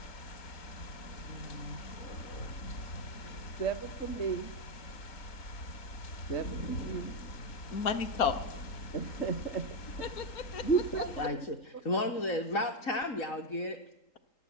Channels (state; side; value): late; right; 3.8 ms